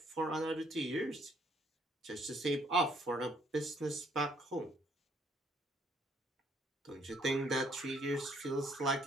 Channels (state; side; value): normal; both; correlation 0.66